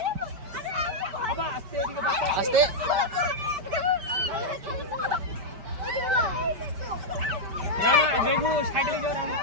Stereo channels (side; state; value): left; late; 5.1 ms